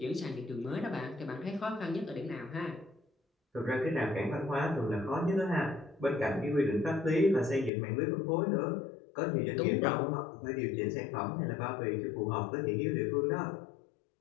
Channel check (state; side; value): drops out; right; at 7.7 s